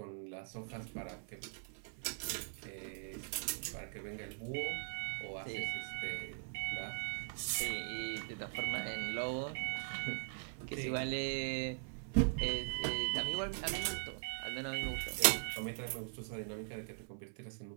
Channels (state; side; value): silent; left; 50 dB below the other